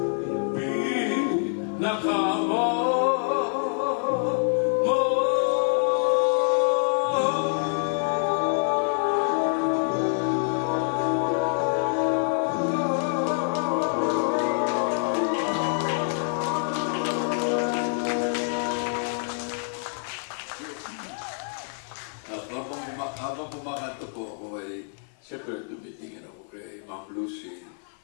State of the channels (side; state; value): right; silent; 56 dB below the other